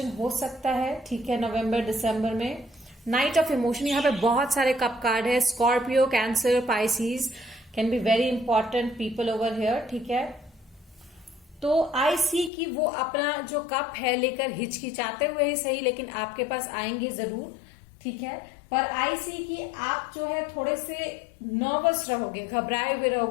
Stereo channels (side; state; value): right; drops out; at 12.5 s